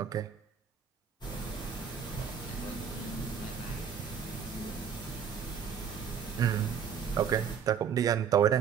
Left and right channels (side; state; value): left; quieter; 7.4 dB